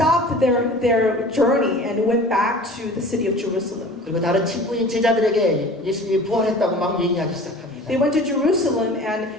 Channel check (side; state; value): both; normal; correlation 0.41